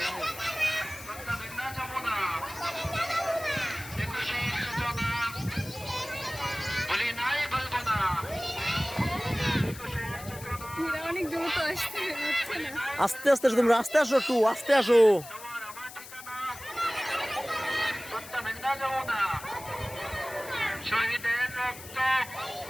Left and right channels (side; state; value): left; noise; hiss, 15 dB below the sound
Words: আস্তে আস্তে তোমরা আস্তে আসো, একটু আস্তে আসো।